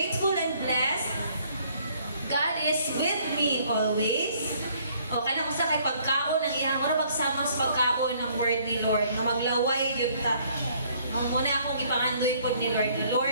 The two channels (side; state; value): both; inverted; correlation -0.62